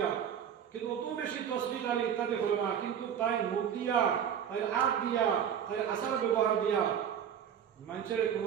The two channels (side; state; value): left; quieter; 8.7 dB